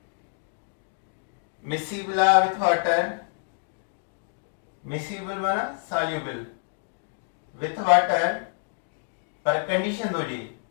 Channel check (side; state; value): right; silent; digital silence